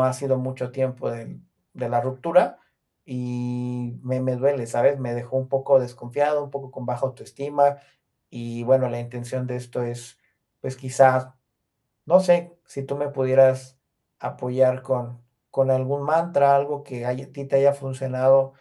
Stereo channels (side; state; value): both; identical; correlation 1.00